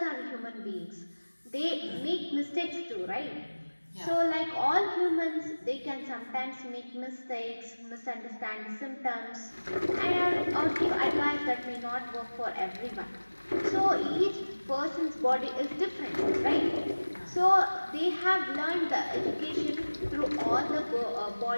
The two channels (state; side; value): inverted; both; correlation -1.00